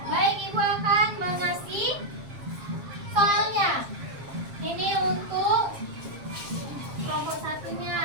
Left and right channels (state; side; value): late; left; 7.4 ms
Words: Baik, Ibu akan mengasih soalnya. Ini untuk kelompok